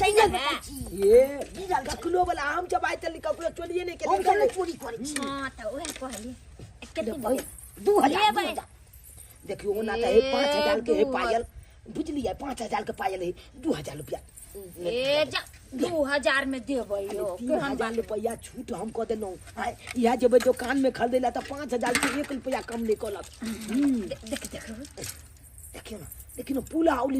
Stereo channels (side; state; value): both; identical; correlation 1.00